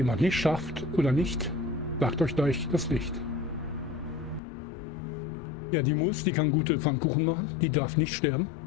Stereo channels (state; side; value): drops out; right; at 4.4 s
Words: nicht schafft oder nicht, sagt euch gleich das Licht. Ja, die kann gute Pfannkuchen machen. Die darf nicht sterben.